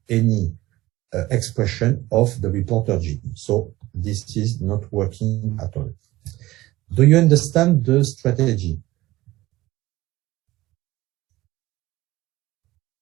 any expression of the reporter gene. So this is not working at all. Do you understand the strategy?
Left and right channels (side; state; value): left; quieter; 17.7 dB